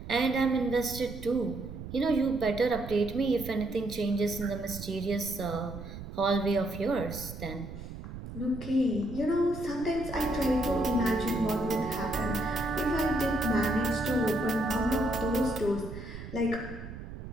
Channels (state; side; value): noise; right; rumble, 11 dB below the sound